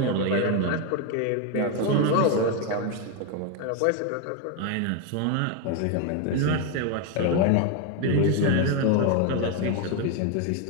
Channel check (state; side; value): different; both; correlation 0.02